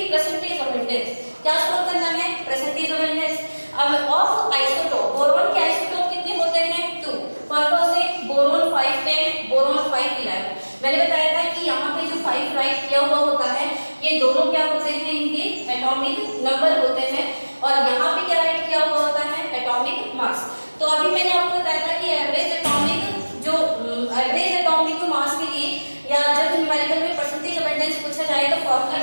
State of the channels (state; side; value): inverted; both; correlation -1.00